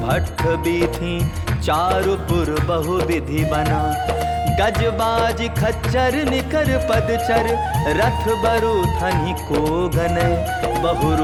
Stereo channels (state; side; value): identical; both; correlation 1.00